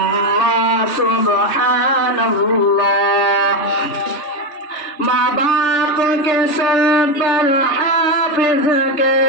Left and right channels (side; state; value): right; late; 3.4 ms